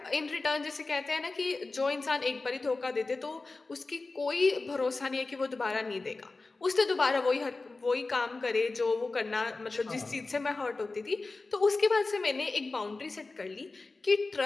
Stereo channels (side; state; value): right; quieter; 3.5 dB